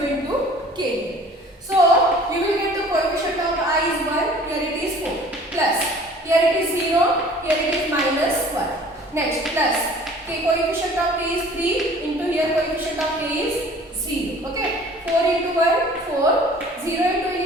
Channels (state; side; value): normal; both; correlation 0.49